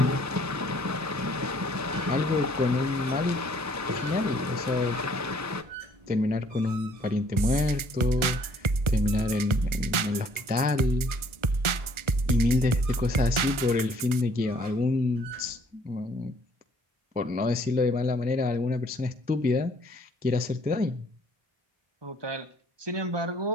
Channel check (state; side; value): late; left; 1.3 ms